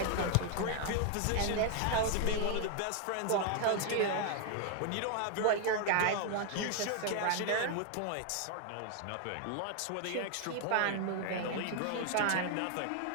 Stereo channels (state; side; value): different; both; correlation 0.00